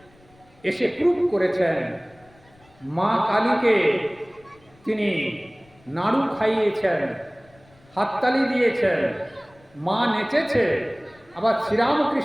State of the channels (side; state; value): left; noise; rumble, 30 dB below the sound